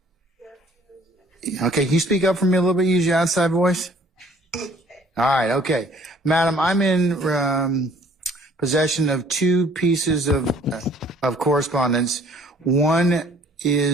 Okay, can you speak up for me a little bit? Use your outside voice. All right, okay. Madam, I'm in possession of two pieces of correspondence. One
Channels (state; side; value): normal; both; correlation 0.57